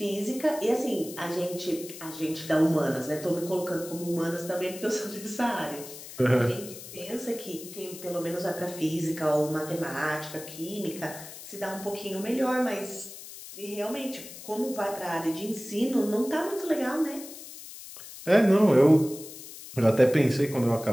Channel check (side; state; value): left; noise; hiss, 14 dB below the sound